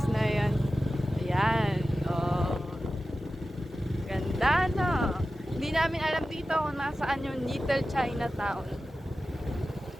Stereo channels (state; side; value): normal; both; correlation 0.94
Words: na yan. Ayan. Oh. Ganda, no? Hindi namin alam dito kung nasaan yung Little Chinatown.